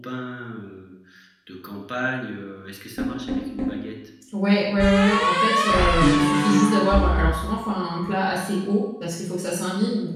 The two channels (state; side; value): identical; both; correlation 1.00